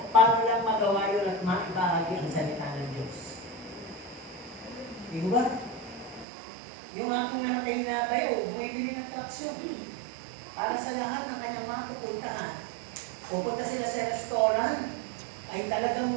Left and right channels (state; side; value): drops out; left; at 6.2 s